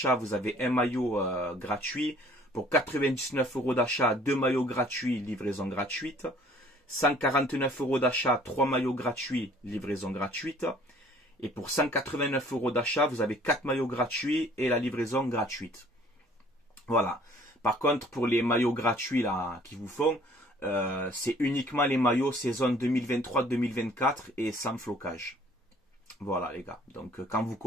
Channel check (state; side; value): normal; both; correlation 0.55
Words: vous avez un maillot gratuit. Pour 99 € d'achat, 2 maillots gratuits, livraison gratuite. 149 € d'achat, 3 maillots gratuits, livraison gratuite. Et pour 189 € d'achat, vous avez 4 maillots gratuits et la livraison gratuite. Voilà. Par contre, pour les maillots gratuits là qui vous font, c'est uniquement les maillots saison 2023-2024 et sans flocage. Voilà les gars, donc quand vous